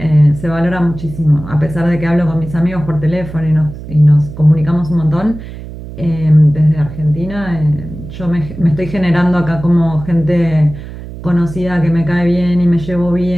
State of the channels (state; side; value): noise; right; hum, 12 dB below the sound